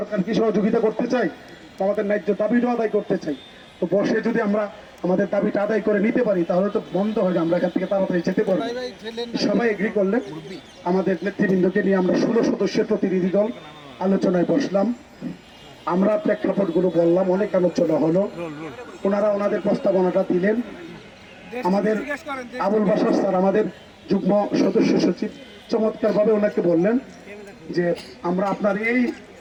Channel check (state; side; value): identical; both; correlation 1.00